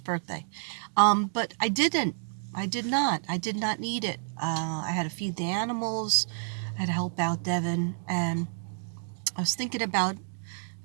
But I didn't. I did not. I did not need it. I had to feed the animals. I had to help out Devin, and I was thinking about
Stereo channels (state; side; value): silent; left; digital silence